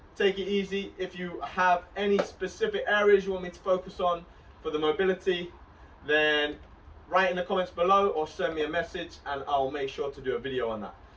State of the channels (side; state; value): both; identical; correlation 1.00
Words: Take it easy. If you have any specific areas you want me to focus on for the mobility, then write in the comments below or send me a message and I'll make sure to do a video on that.